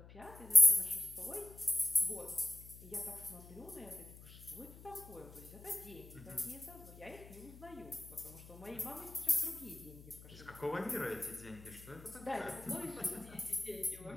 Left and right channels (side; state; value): left; noise; hum, 18 dB below the sound